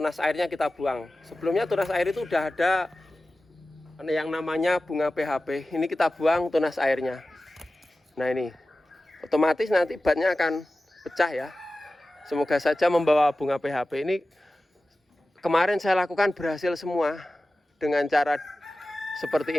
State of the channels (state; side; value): normal; both; correlation 0.95